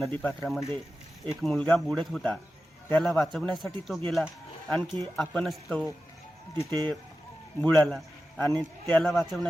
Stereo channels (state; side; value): normal; both; correlation 0.93